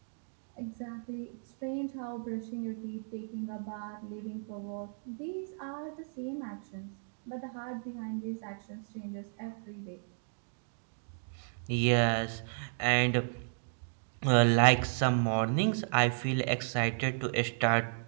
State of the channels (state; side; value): silent; left; digital silence